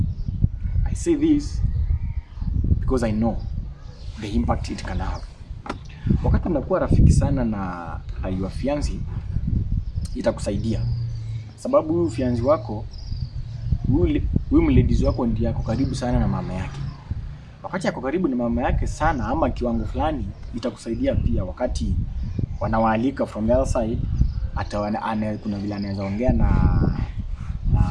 I say this because I know the impact it can have. Wakati unakuwa rafiki sana na your fiancé, itakusaidia. Sababu huyu fiancé wako, huyu mladies wako ndiye ako karibu sana na mama yake. Wakati ako karibu na mama yake sana ama kiwango fulani, itakusaidia pia wakati wanawaalika from the other side. Kuna vile anaweza ongea na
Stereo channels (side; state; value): both; identical; correlation 1.00